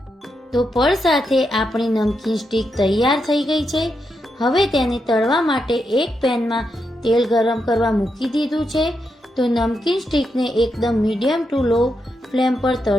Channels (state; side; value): normal; both; correlation 0.84